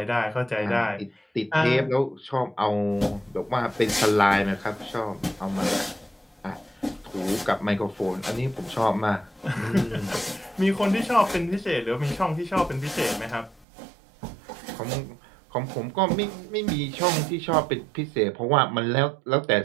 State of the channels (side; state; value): left; drops out; at 13.7 s